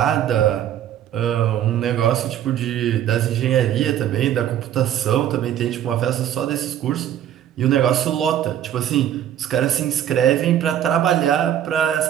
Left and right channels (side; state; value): left; quieter; 10.8 dB